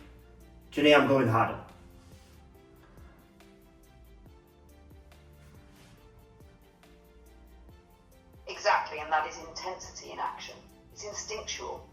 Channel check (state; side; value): identical; both; correlation 1.00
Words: I'm going harder. Exactly, and that is intensity in action. It's instinctual,